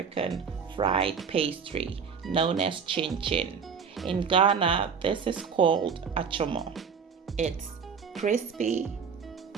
fried pastry known as chin chin. In Ghana, this is called Achomo. It's crispy,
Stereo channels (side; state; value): left; quieter; 6.2 dB